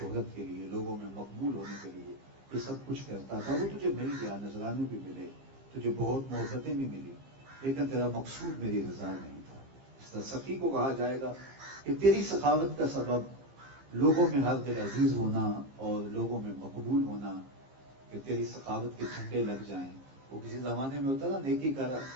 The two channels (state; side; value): late; left; 15 ms